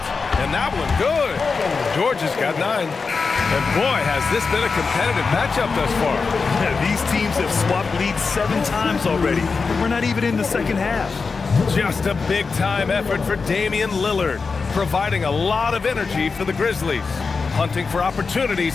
And that one good. George has got 9. And boy, has this been a competitive matchup thus far. Yeah, these teams have swapped leads 7 times already. We're not even in the second half. Just a big-time effort for Damian Lillard, providing a lot of energy for the Grizzlies. Hunting for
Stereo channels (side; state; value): right; quieter; 4.7 dB